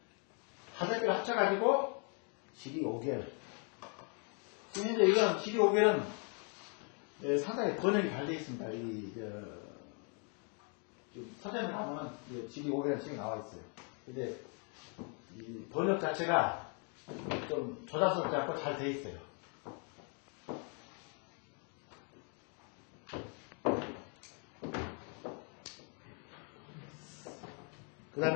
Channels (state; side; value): quieter; right; 39.0 dB